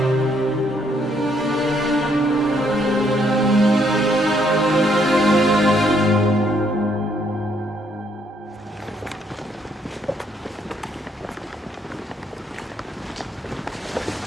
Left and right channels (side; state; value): both; normal; correlation 0.70